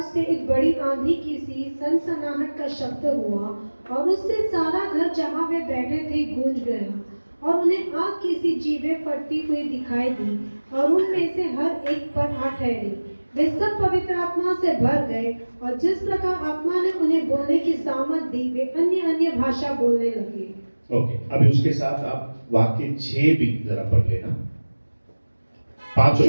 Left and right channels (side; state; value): both; inverted; correlation -1.00